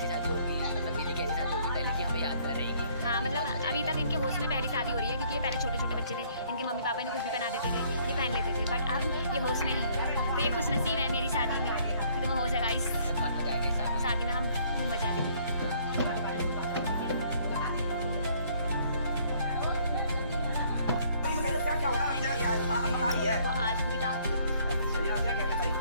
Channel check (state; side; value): inverted; both; correlation -0.62